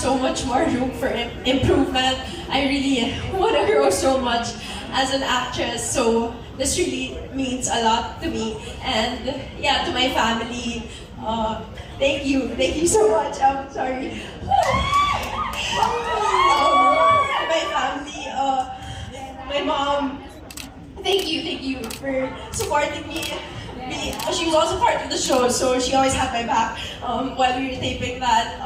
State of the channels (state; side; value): identical; both; correlation 1.00